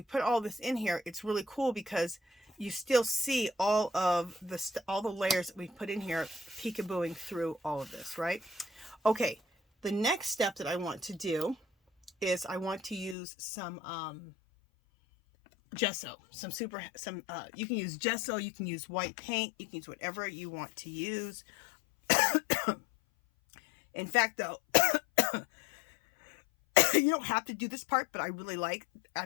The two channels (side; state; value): right; drops out; at 13.2 s